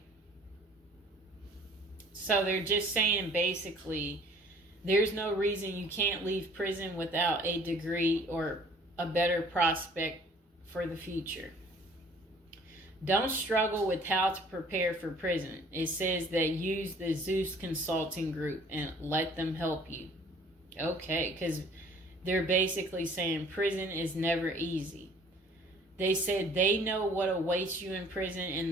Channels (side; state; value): both; normal; correlation 0.54